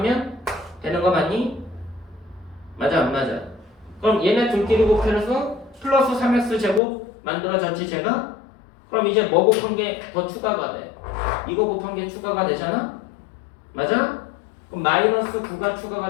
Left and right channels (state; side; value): drops out; right; at 6.8 s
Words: 되는 거 맞니? 맞아 안 맞아? 그럼 얘네 둘끼리 곱해서 플러스 3x 제곱 만들어졌지 제가? 그럼 이제 뭐 곱한 게 더 추가가 돼? 이거 곱한 게 추가가 되잖아? 맞아? 그럼 마이너스 9가 추가가